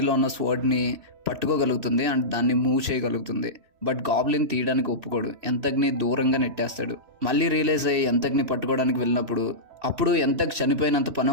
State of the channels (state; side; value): late; left; 3.0 ms